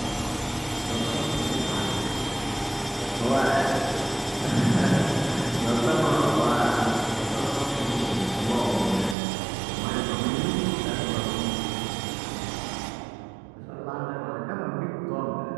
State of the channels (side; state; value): left; drops out; at 9.2 s